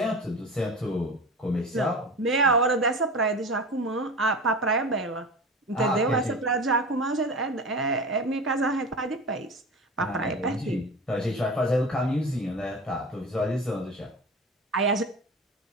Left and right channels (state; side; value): normal; both; correlation 0.31